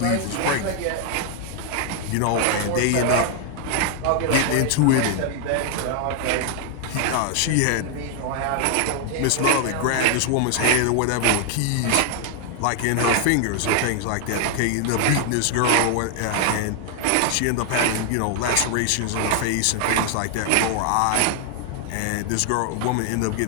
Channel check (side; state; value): both; different; correlation 0.00